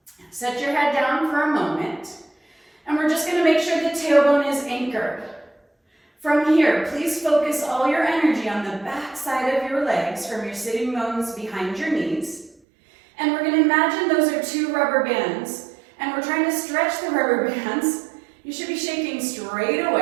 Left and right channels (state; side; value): drops out; left; at 12.6 s